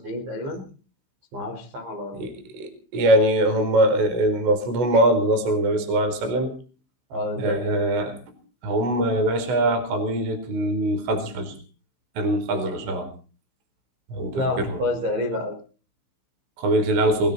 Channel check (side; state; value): left; late; 16 ms